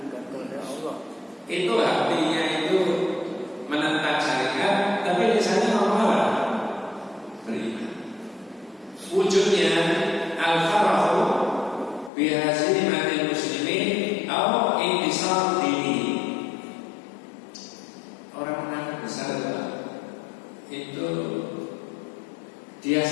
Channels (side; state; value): right; drops out; at 12.1 s